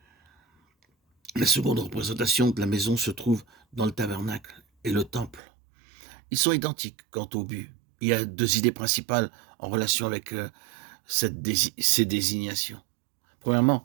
La seconde représentation de la maison se trouve dans le tabernacle et le temple. Ils sont identiques quant au but. Il y a 2 idées principales en relation avec ces désignations. Premièrement,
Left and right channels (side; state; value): left; drops out; at 5.4 s